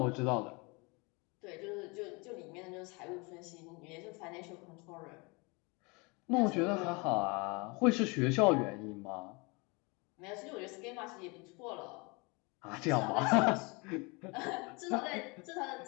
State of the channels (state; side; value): quieter; right; 28.6 dB